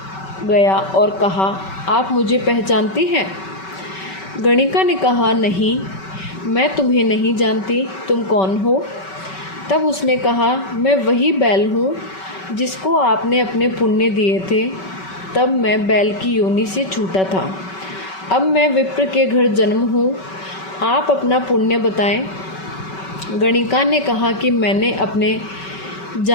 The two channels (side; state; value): right; late; 5.3 ms